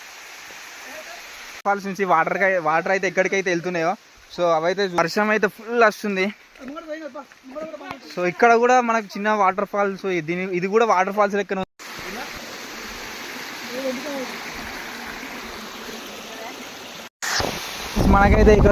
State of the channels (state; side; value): identical; both; correlation 1.00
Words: ఫాల్స్ నుంచి వాటర్ అయితే ఎక్కడికైతే వెళ్తున్నాయో, సో అవైతే వర్షం అయితే ఫుల్ వస్తుంది. సో ఇక్కడ కూడా మనకు చిన్న వాటర్ ఫాల్స్, ఇది కూడా వాటర్ ఫాల్స్ లెక్క. మనకైతే